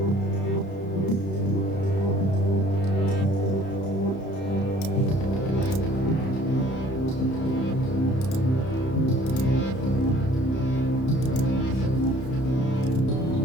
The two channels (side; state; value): right; late; 31 ms